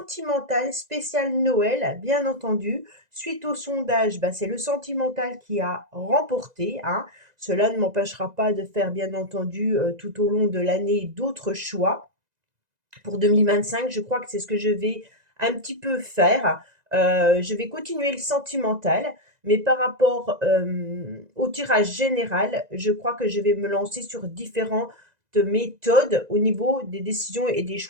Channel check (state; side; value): late; left; 2.0 ms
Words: spécial Noël, bien entendu. Suite au sondage, c'est le sentimental qui a remporté, hein. Cela ne m'empêchera pas de faire, bien entendu, tout au long de l'année, d'autres choix. Pour 2025, je crois que c'est ce que je vais un petit peu faire. Je vais continuer le sentimental, mais par rapport au tirage général, je crois que je vais me lancer sur différentes méthodes au niveau des décisions et des